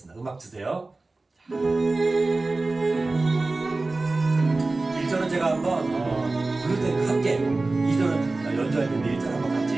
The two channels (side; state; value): left; quieter; 3.3 dB